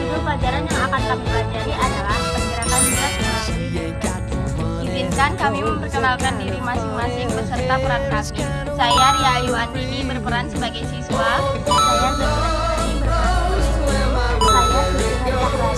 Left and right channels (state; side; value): identical; both; correlation 1.00